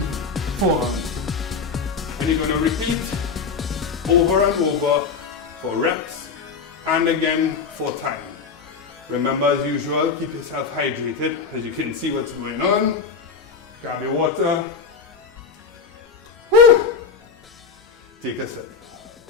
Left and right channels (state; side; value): quieter; right; 5.4 dB